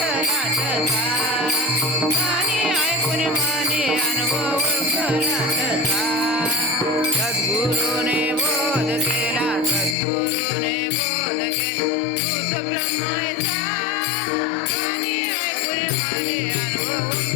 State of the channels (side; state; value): right; drops out; at 10.0 s